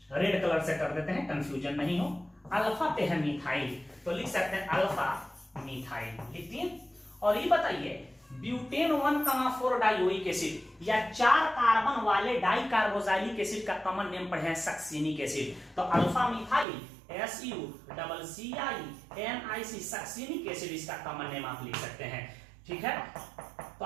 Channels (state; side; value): drops out; left; at 16.7 s